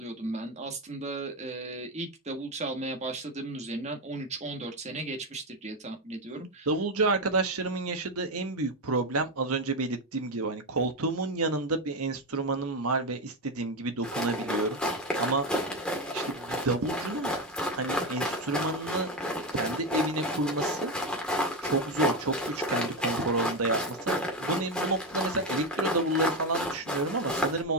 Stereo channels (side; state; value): both; normal; correlation 0.12